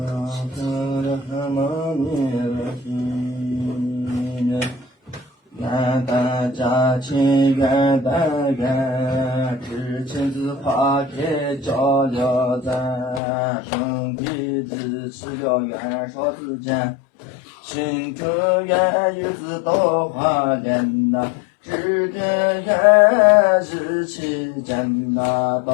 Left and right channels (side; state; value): right; drops out; at 13.2 s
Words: 愿大家亲，愿大愿，知亲子花开交流赞，兄弟支持要元少之间，心中愿日子多花莲呐，知根愿日期间呐，